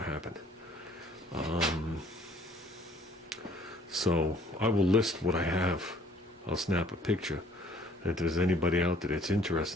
to happen. So I will list what I have. I'll snap a picture. If there's anybody out there that's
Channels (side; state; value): both; normal; correlation 0.58